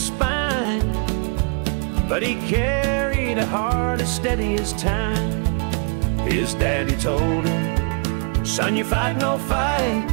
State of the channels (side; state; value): left; quieter; 37.2 dB